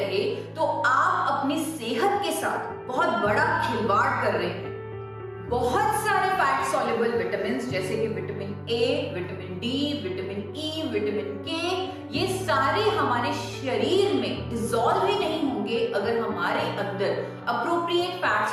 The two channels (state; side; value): identical; both; correlation 1.00